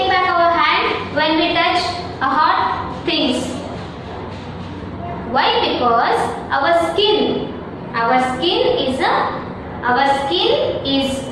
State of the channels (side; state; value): both; identical; correlation 1.00